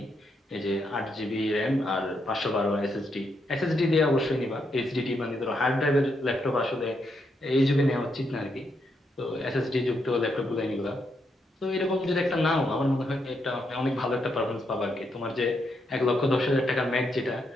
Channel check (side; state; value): both; normal; correlation 0.79